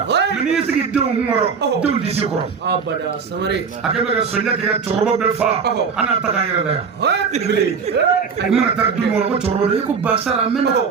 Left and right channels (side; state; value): left; quieter; 5.8 dB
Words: mɛ n'i y'i sigi denw kɔrɔ denw t'i sigi kɔrɔ a kɛ bɛ ka sɔnja kɛ ka cɛkɔrɔba bɛɛ fa an n'a ta k'an yɛrɛ la yan i mana taa du kɔnɔ ko cɛkɔrɔba de ko basara mɛnna